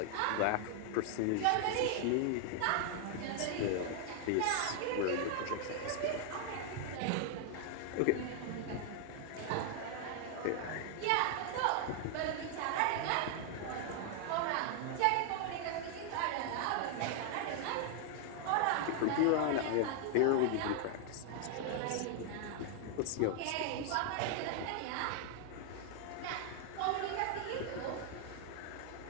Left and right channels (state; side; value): different; both; correlation 0.00